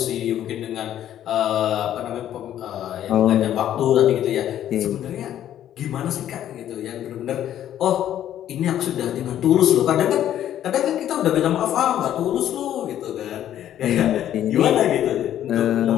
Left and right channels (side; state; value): right; quieter; 11.3 dB